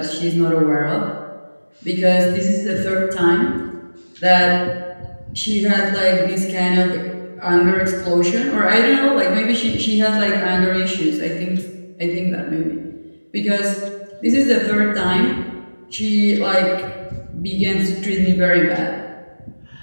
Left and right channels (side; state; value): both; inverted; correlation -1.00